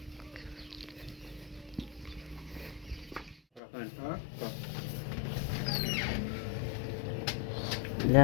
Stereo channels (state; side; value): drops out; right; at 3.6 s